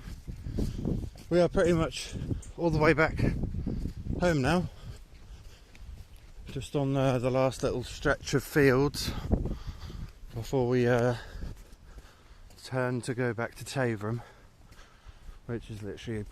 We are pretty much all the way back home now. Just on the last little stretch of fields before we turn to go back to Taverham, which is literally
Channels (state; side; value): identical; both; correlation 1.00